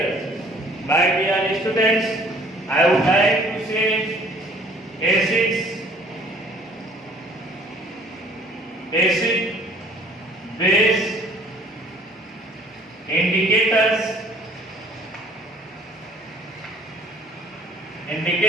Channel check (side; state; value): both; normal; correlation 0.55